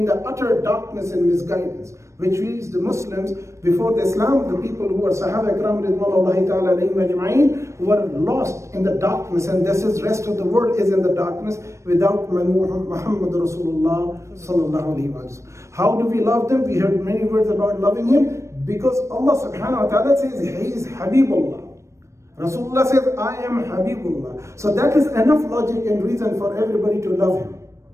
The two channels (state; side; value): late; left; 0.14 ms